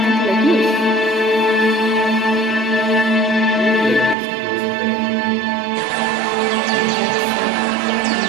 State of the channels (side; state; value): left; drops out; at 4.2 s